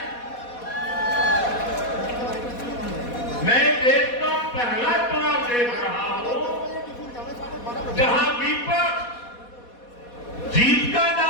मैं देश का पहला चुनाव देख रहा हूं जहां विपक्ष जीत का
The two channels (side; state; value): right; late; 4.2 ms